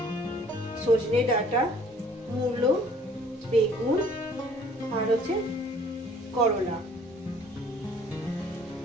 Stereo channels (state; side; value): normal; both; correlation 0.55